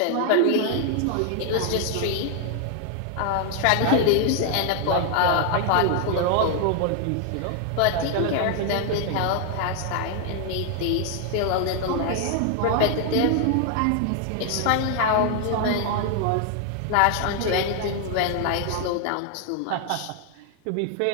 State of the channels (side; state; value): both; different; correlation 0.00